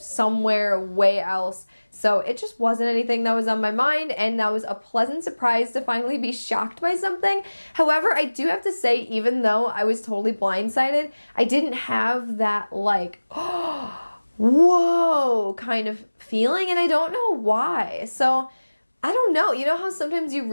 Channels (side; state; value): both; inverted; correlation -1.00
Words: way else, so it just wasn't anything that was on my mind, and that was a pleasant surprise to finally be shocked by something. However, I do have to say, even though I was totally blindsided, I didn't have that like, whoa kind of feeling, and I don't know why. So I don't know. You know how sometimes you